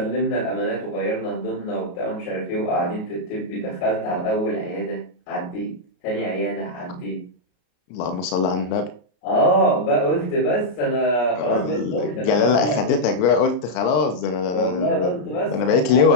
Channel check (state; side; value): late; right; 33 ms